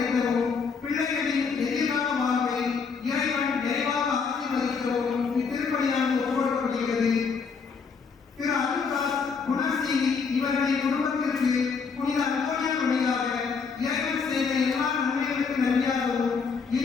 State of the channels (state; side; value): quieter; right; 5.4 dB